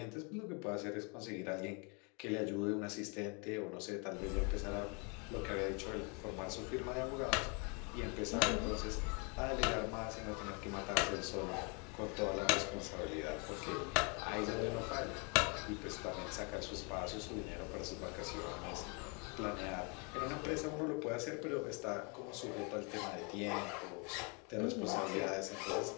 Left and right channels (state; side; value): quieter; right; 33.6 dB